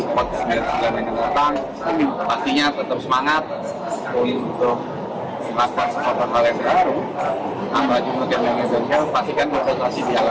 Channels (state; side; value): identical; both; correlation 1.00